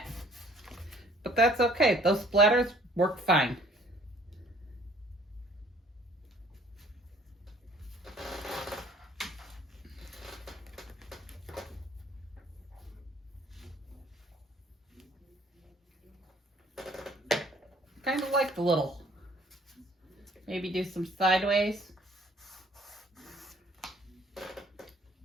But that's okay. Those splatters work fine. Kind of like the little. Maybe do some sideways.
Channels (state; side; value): normal; both; correlation 0.57